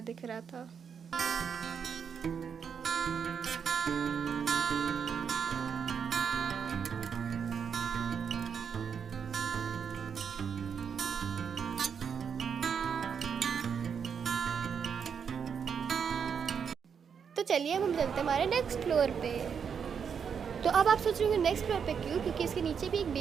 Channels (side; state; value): left; quieter; 7.0 dB